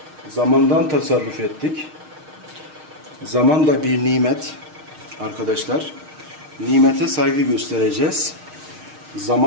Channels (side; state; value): left; late; 6.5 ms